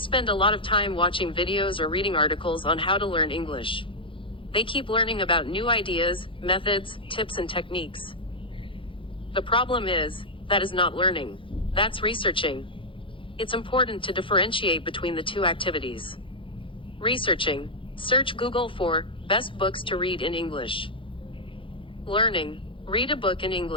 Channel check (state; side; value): late; right; 0.25 ms